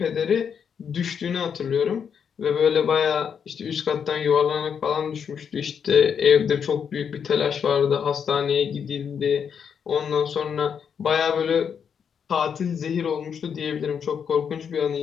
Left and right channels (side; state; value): right; quieter; 7.2 dB